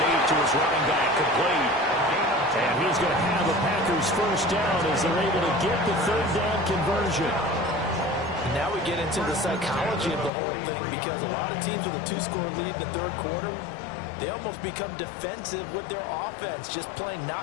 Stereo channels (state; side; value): drops out; right; at 10.3 s